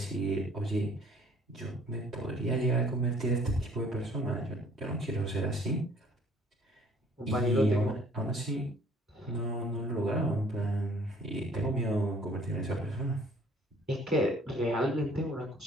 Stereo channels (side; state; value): both; normal; correlation 0.57